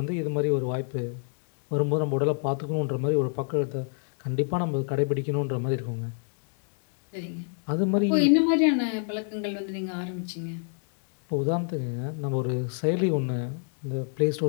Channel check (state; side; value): silent; right; 60 dB below the other